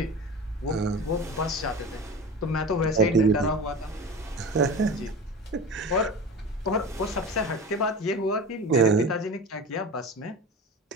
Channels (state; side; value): normal; both; correlation 0.32